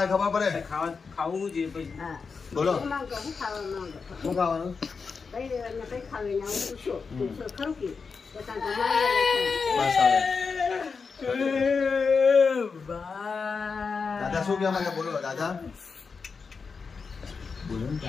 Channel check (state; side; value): quieter; right; 5.1 dB